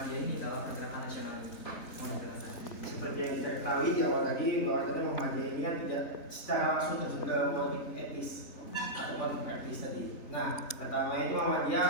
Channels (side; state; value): right; late; 3.6 ms